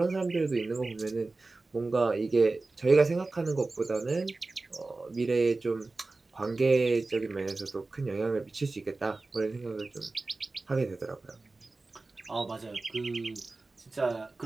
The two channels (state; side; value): quieter; left; 3.4 dB